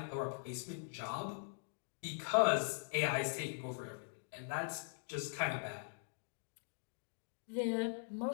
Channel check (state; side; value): silent; right; digital silence